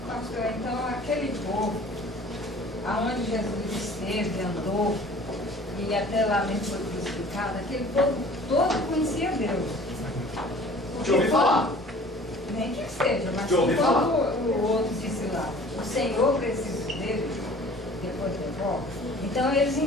pastor, então aquele povo, aonde Jesus esteve, andou, e até lá mesmo foi crucificado, aquele povo todo conhecia Deus. De ouvir falar. Nem que seja, mas De ouvir falar. o outro disse lá, o Senhor precisa dele, depois devolve. Então eles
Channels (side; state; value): both; normal; correlation 0.48